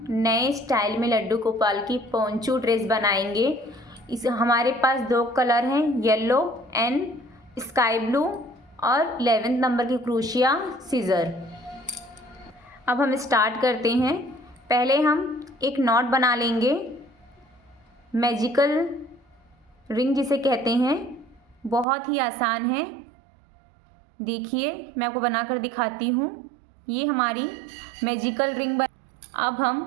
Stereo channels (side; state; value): left; drops out; at 21.9 s